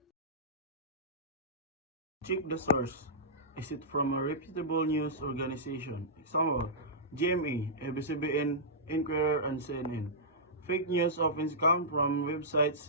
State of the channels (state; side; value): normal; both; correlation -0.15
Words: Check the source. Is it from a reputable news organization? Example, GMA, ABS-CBN, Inquirer, and CNN. Fake news often come from